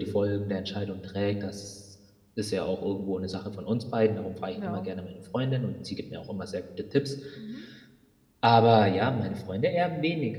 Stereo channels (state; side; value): identical; both; correlation 1.00